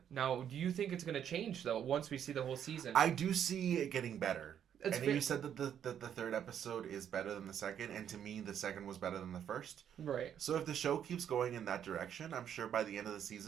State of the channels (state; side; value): quieter; left; 9.2 dB